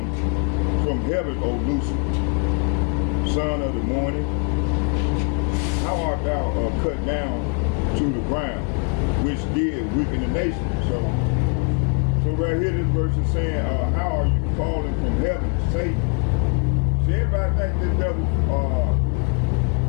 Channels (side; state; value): right; quieter; 34.6 dB